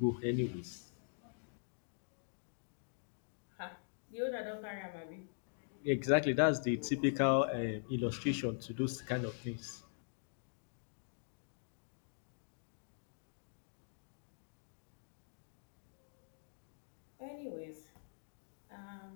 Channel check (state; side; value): silent; right; digital silence